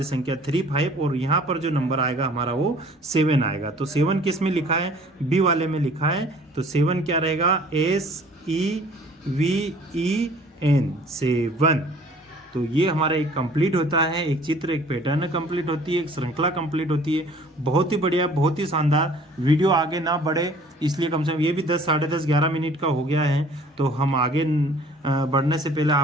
संख्या 3, 5, और यहाँ पर जो नंबर आएगा हमारा वो 7 आएगा। तो 7 किस में लिखा है, बी वाले में लिखा है। तो 7 क्या रहेगा, SEVEN 7। तो ये हमारा एक कंप्लीट होता है, एक चित्र, एक पैटर्न कंप्लीट होती है, एक श्रृंखला कंप्लीट होती है। बहुत ही बढ़िया, बहुत ही शानदार। वीडियो आगे ना बढ़े इसलिए कम से कम ये भी 10, साढ़े 10, 11 मिनट का हो गया है। तो हम आगे बढ़ने से पहले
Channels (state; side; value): normal; both; correlation 0.52